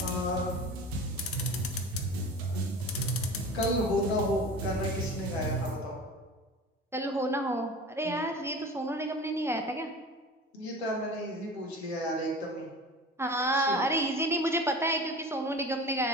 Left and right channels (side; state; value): both; normal; correlation 0.37